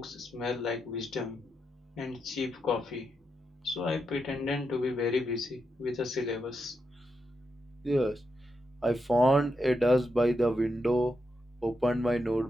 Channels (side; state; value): both; normal; correlation 0.84